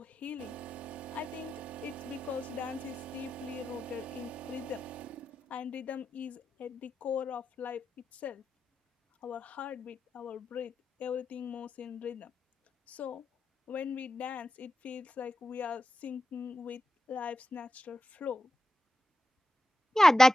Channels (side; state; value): both; normal; correlation 0.91